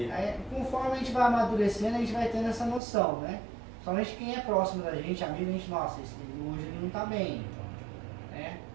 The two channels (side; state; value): left; drops out; at 2.8 s